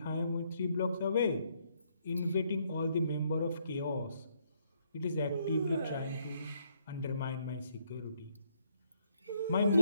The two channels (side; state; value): both; inverted; correlation -0.71